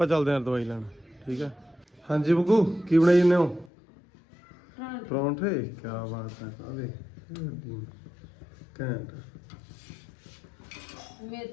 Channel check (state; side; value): drops out; right; at 3.7 s